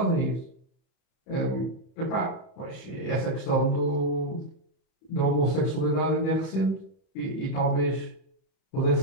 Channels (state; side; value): late; right; 31 ms